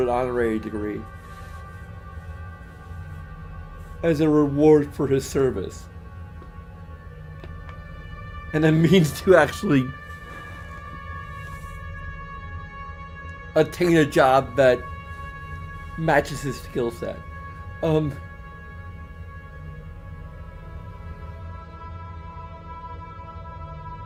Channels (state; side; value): identical; both; correlation 1.00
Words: an honorary degree as a reward for his service. And a means to actually attain a job that matches his skill set.